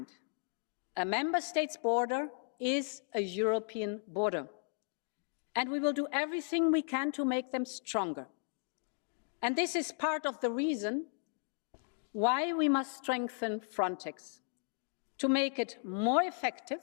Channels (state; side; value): silent; right; 54 dB below the other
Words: a member state's border is a European border, and we will do everything we can to make them stronger. And this is part of the reason why we must strengthen Frontex, to make it more effective